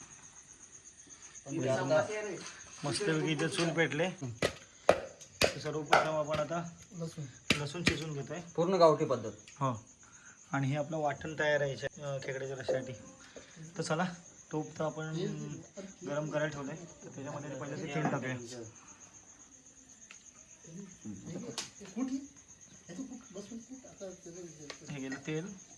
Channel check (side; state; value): both; identical; correlation 1.00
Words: पण ते आता मस्तपैकी इथे चूल पेटले. तर सर्वप्रथम आपण आता लसूण शिजून घेतोय. पूर्ण गावठी पद्धत. हो आणि हे आपलं वाटण तयार आहे खेकड्याच्या रश्श्यासाठी. तर चला तूप तर आपण गरम करायला ठेवलंय, तर त्याच्यामध्ये पहिले ते तेल टाकूया. हे गेलं तेल,